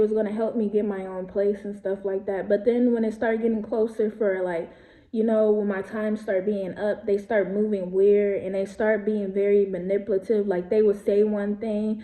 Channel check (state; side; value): identical; both; correlation 1.00